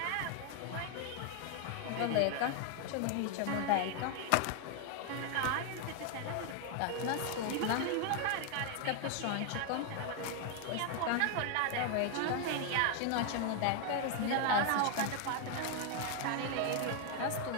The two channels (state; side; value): different; both; correlation 0.00